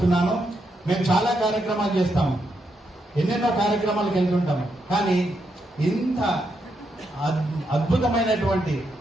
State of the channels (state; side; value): normal; both; correlation 0.81